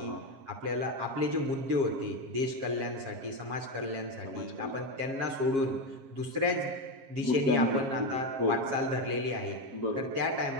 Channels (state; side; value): late; left; 7.4 ms